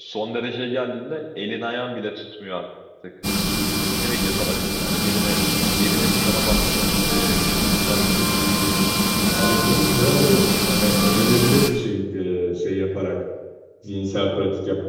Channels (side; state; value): both; identical; correlation 1.00